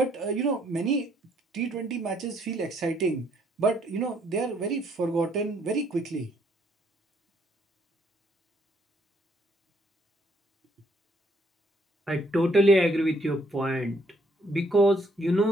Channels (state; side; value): normal; both; correlation 0.68